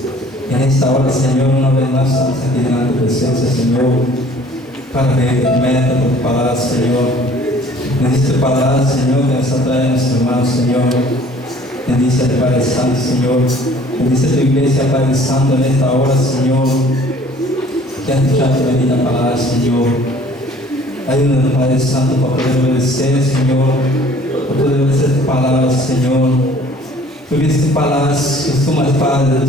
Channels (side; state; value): both; normal; correlation 0.53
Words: En esta hora, Señor, una vez más estamos aquí delante de tu presencia, Señor, para pedirte por tu palabra, Señor. Bendice tu palabra, Señor, que nos atrae a nuestros hermanos, Señor. Bendice a tu Padre Santo, Señor. Bendice a tu iglesia, Padre Santo, en esta hora, Señor, que has escuchado tu bendita palabra, Señor. Ayúdanos, Padre Santo, para poder obedecer, Señor, para poder obedecer tu palabra, Señor. Porque tus palabras, que tú más Padre de